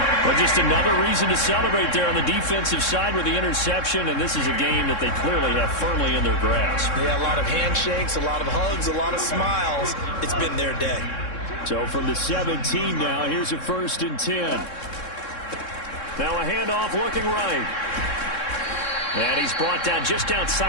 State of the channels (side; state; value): right; late; 3.7 ms